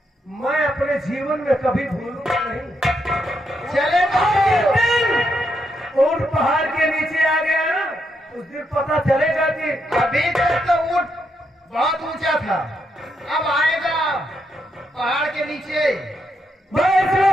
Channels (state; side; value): normal; both; correlation 0.80